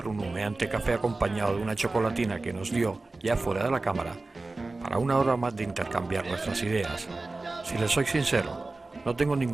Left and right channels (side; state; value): left; quieter; 3.3 dB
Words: un humeante café acompañado de una chocolatina que nos dio, ya fuera de la cámara, para una hora más de intercambiar nuestras ideas. Si les soy sincero, no tengo